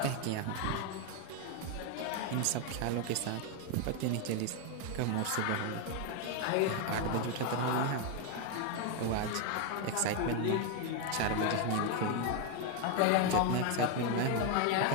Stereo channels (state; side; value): different; both; correlation 0.01